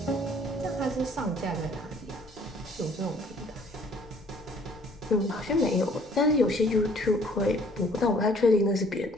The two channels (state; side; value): noise; left; rumble, 24 dB below the sound